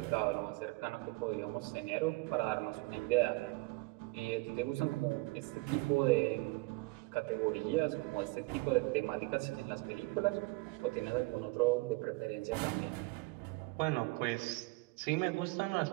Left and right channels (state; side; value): quieter; left; 25.1 dB